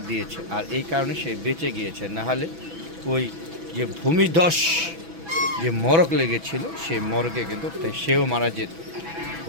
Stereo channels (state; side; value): late; left; 6.1 ms